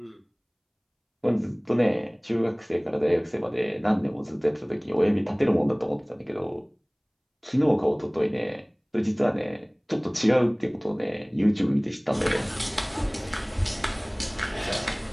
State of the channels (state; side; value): identical; both; correlation 1.00